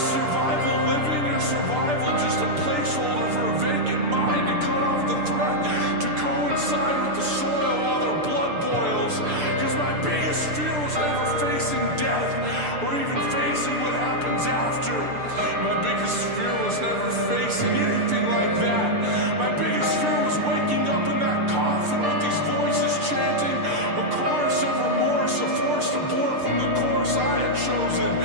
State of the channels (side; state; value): left; late; 6.8 ms